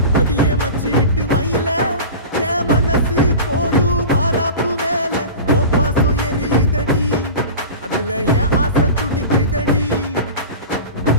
அடியே மச்சி விட்டு மயில என் மனசு போடு மாறாப்பு மேல ஓ பாசம் எரியுதடி அதுல என் ஆசை துடிக்குதடி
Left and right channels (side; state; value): both; inverted; correlation -0.33